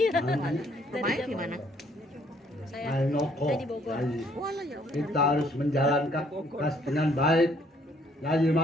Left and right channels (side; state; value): both; normal; correlation 0.65